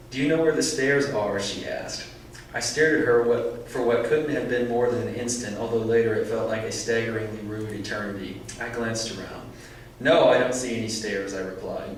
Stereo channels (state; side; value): identical; both; correlation 1.00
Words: "Do you know where the stairs are?" she asked. I stared at her for what couldn't have been more than an instant, although later it felt like a staggeringly rude eternity. I glanced around. "No, I don't see any stairs," I replied.